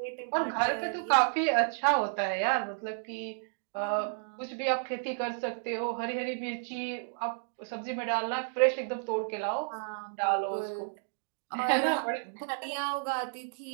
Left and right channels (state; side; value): silent; left; digital silence